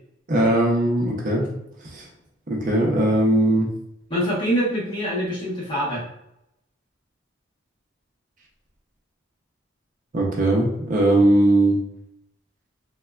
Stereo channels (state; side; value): normal; both; correlation 0.67